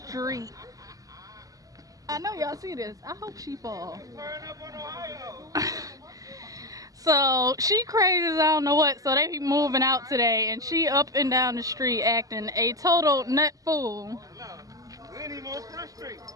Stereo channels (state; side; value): late; left; 0.17 ms